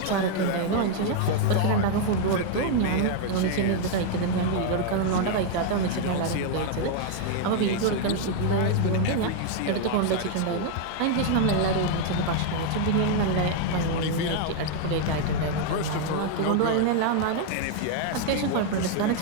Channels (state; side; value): different; both; correlation 0.00